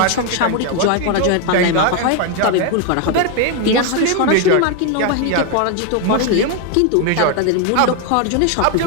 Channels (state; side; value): different; both; correlation 0.01